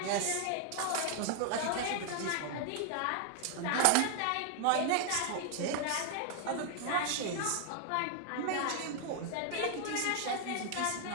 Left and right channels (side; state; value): both; different; correlation 0.00